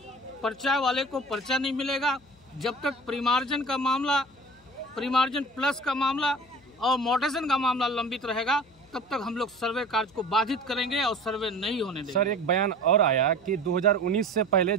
पर्चा वाले को पर्चा नहीं मिलेगा, जब तक परिमार्जन का मामला, परिमार्जन प्लस का मामला और मोटेशन का मामला लंबित रहेगा, तब तक हम लोग सर्वे कार्य को बाधित करेंगे और सर्वे नहीं होने देंगे। सर, एक बयान और आया कि 2019 से पहले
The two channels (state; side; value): noise; left; hum, 29 dB below the sound